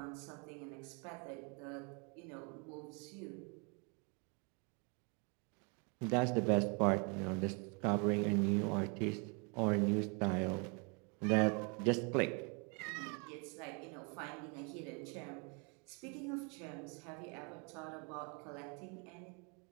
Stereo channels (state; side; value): quieter; left; 34.6 dB